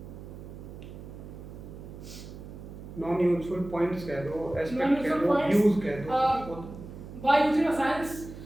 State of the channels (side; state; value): right; noise; hum, 13 dB below the sound